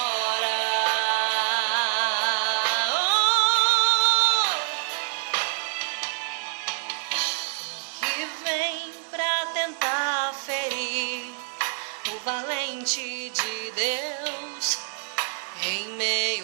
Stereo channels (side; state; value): left; silent; 56 dB below the other